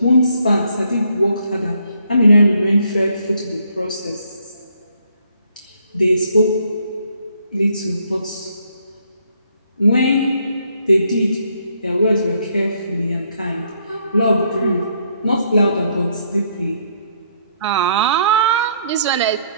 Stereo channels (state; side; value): inverted; both; correlation -0.69